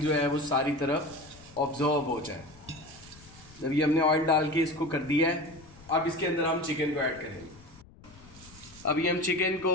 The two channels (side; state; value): left; noise; rumble, 22 dB below the sound